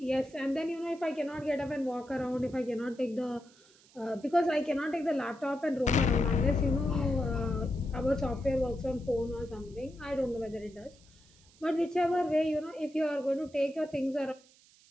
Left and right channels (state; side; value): noise; right; hiss, 27 dB below the sound